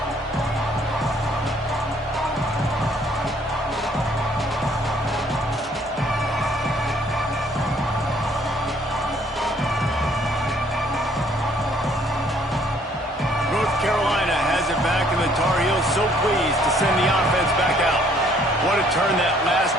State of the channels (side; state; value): both; normal; correlation 0.62